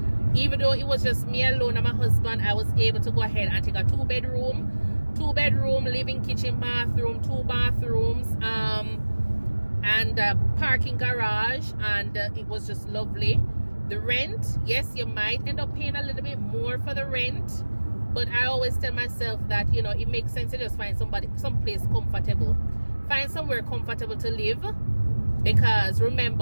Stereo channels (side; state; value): both; inverted; correlation -1.00